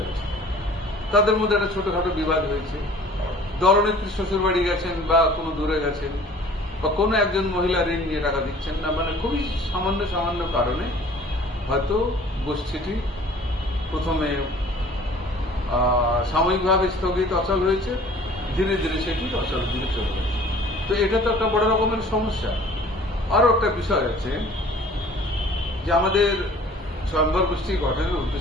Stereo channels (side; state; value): both; normal; correlation 0.50